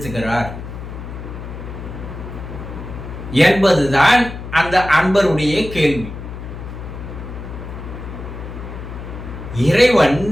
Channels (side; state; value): left; noise; hum, 10 dB below the sound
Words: என்பதுதான் அந்த அன்பருடைய கேள்வி. இறைவன்